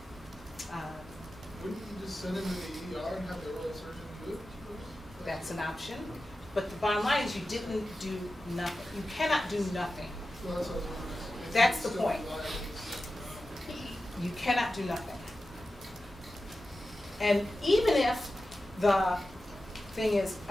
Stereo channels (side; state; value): both; normal; correlation 0.93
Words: Wouldn't you just send them to the ER and have the oral surgeon do it? That's an option, but the bottom line is you didn't do nothing. You cannot do nothing. Well, that's what I was wondering. Is That's it the still point. liable? You cannot do nothing. And even if the thing is,